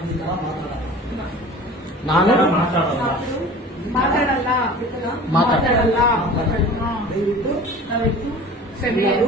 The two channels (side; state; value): both; normal; correlation 0.41